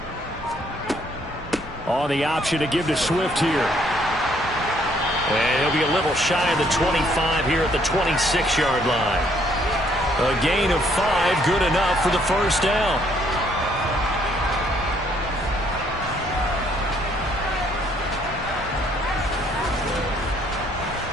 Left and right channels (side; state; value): both; normal; correlation 0.67